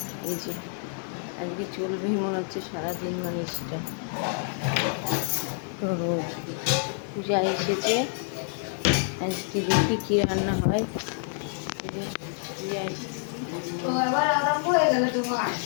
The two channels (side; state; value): right; silent; 56 dB below the other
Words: এই যে আজকে চলবেই মনে হচ্ছে সারাদিন, মানে সেটা তো রোদ। পূজা এসেছে, আজকে দেখি কী রান্না হয়। পূজা